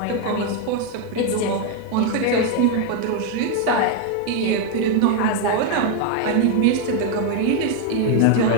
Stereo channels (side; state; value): both; different; correlation 0.01